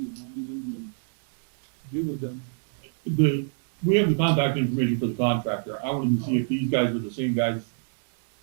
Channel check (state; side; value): silent; left; 61 dB below the other